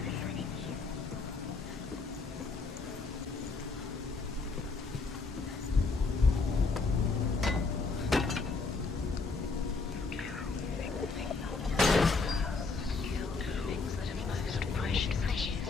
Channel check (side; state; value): right; quieter; 4.1 dB